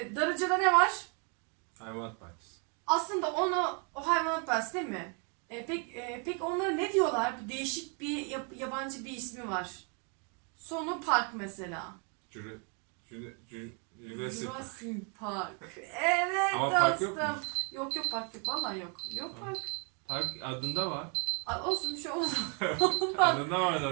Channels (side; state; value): left; quieter; 37.2 dB